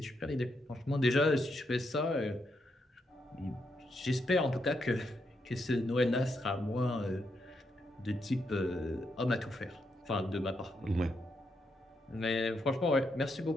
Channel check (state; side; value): normal; both; correlation 0.80